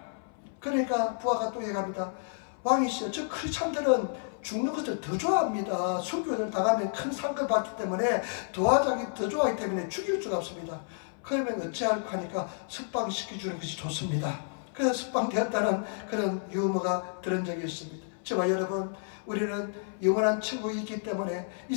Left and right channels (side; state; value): right; silent; 58 dB below the other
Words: 그러니까 부하가 또 얘기합니다. 왕이시여, 저 크리스찬들은 죽는 것을 더 좋아합니다. 순교를 당하면 큰 상을 받기 때문에 도와주기 더 좋아하기 때문에 죽일 수가 없습니다. 그러면 어찌할까 하니까 석방시켜주는 것이 좋습니다. 그래서 석방되었다는 그런 유머가 들은 적이 있습니다. 저와 여러분, 우리는 영원한 천국이 있기 때문에 이